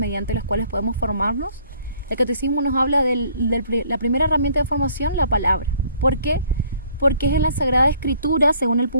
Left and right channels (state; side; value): inverted; both; correlation -0.60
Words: las cuales podemos formarnos. El Catecismo nos habla de la primera herramienta de formación, la palabra. ¿Por qué? Porque es en la Sagrada Escritura, según el